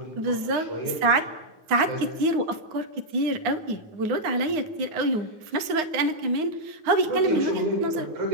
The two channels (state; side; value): late; left; 9.7 ms